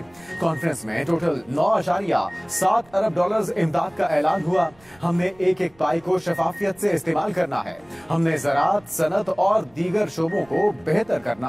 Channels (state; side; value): noise; right; rumble, 30 dB below the sound